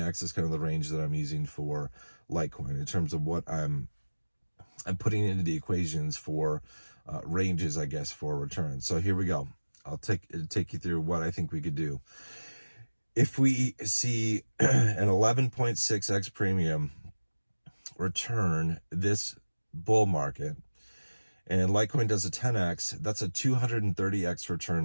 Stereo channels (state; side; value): inverted; both; correlation -1.00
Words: is kind of the range that I'm using for Litecoin in terms of what I'm putting into the equations for ranges, I guess, for returns. So here we go. I'll take you through what I think we could do. If we see an 11.6x premium return this bull market, and Litecoin does a 10x, that's a 230x